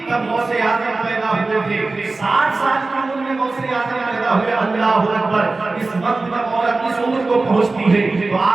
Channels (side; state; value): left; quieter; 3.5 dB